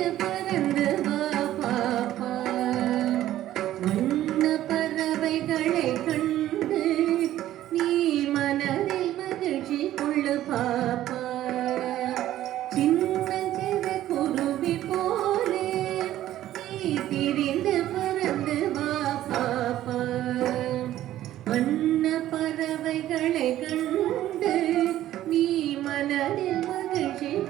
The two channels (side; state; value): left; quieter; 13.4 dB